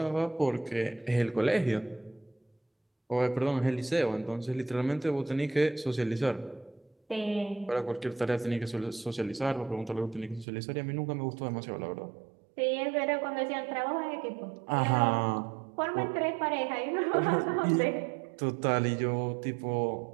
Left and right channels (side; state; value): left; drops out; at 10.5 s